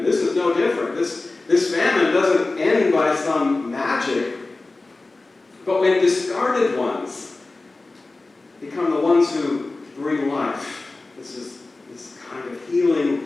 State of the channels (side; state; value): right; quieter; 3.3 dB